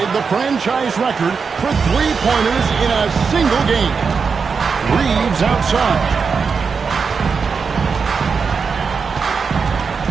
the franchise record for three-pointers in a single game. Reeves outside.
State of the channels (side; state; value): left; quieter; 5.5 dB